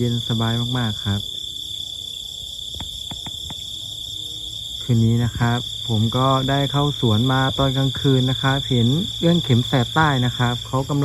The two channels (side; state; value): both; identical; correlation 1.00